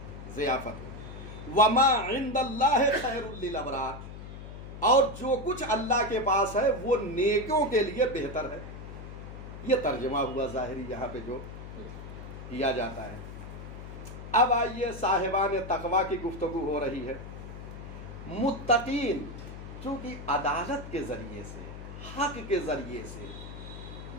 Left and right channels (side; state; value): left; noise; hum, 11 dB below the sound